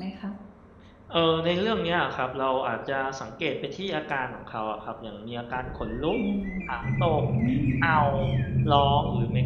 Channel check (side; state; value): both; identical; correlation 1.00